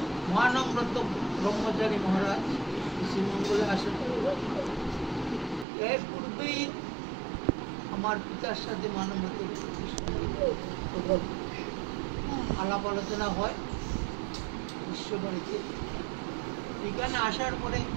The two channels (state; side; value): drops out; left; at 5.7 s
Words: মহানম্রত ব্রহ্মচারী মহারাজ শ্রীমঙ্গলে আসেন, এর পূর্বেই আমার পিতার সাথে মানবত আলাপ আলোচনা হয় বিশ্ববাড়িতে। এখানে আসার পরে